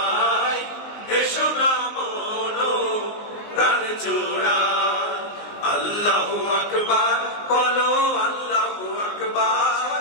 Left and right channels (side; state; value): right; late; 19 ms